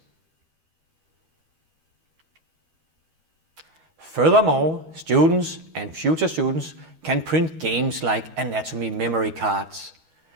Furthermore, students and future students can print games like anatomy memory cards,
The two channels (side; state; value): left; late; 13 ms